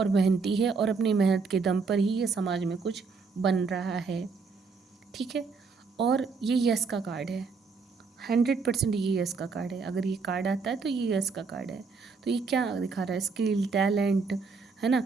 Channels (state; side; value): quieter; left; 4.8 dB